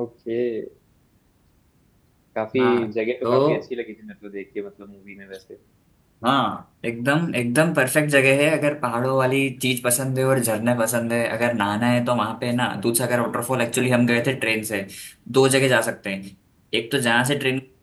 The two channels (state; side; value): identical; both; correlation 1.00